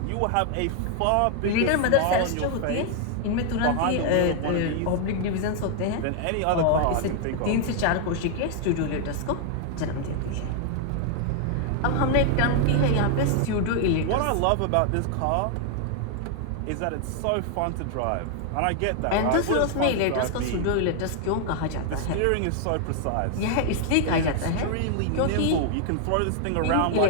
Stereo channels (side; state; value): both; different; correlation 0.00